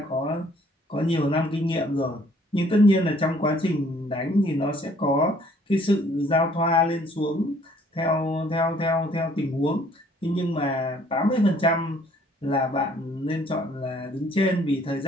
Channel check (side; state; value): both; normal; correlation 0.60